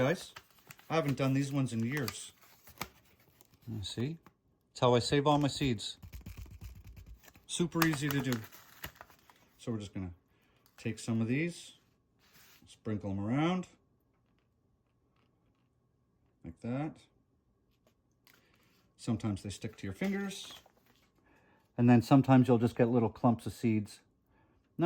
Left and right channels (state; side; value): identical; both; correlation 1.00